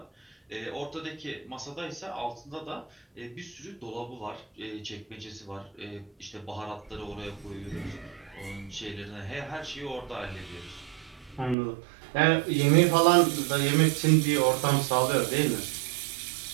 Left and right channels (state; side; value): drops out; left; at 11.6 s